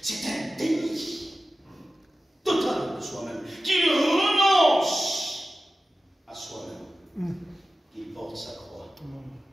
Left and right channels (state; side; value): normal; both; correlation 0.94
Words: c'est un déni total de soi-même, qu'il renonce à soi-même, qu'il porte sa croix